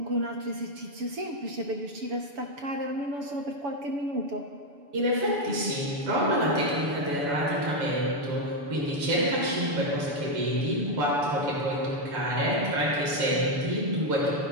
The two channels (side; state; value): left; late; 7.0 ms